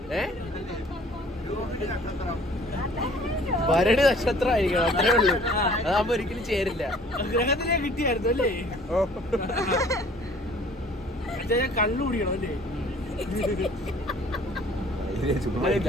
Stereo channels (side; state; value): both; normal; correlation 0.53